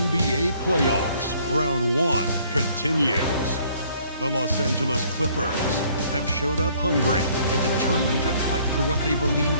playoffs, round 1 continues. The Los Angeles Clippers have showed up hungry and determined to fight for what they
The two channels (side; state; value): both; inverted; correlation -0.61